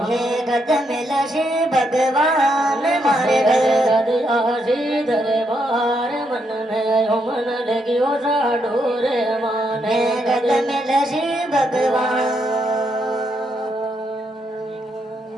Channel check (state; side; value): normal; both; correlation 0.78